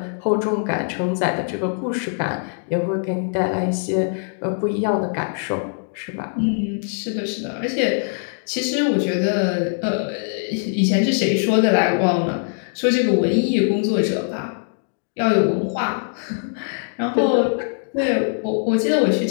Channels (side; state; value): right; silent; 64 dB below the other